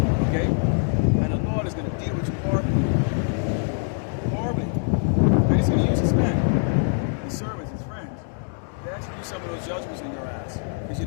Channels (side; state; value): right; silent; 62 dB below the other